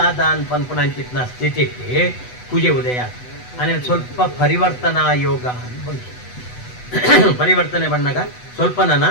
ಅನ್ಪನ್ಪುಣಂಚಿತ್ನ ಸ್ಥಿತಿಗೆ ಕುಜೆ ಉದಯ ಅಂದರೆ ಸ್ವಲ್ಪ ಪರಿವರ್ತನಾ ಯೋಗ ಬಂತು ಪರಿವರ್ತನೆ ಬಣ್ಣಗ ಸ್ವಲ್ಪ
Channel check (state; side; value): late; right; 8.1 ms